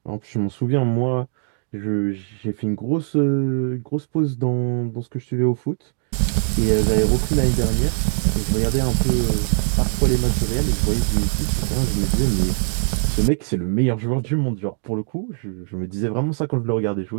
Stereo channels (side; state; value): left; silent; 65 dB below the other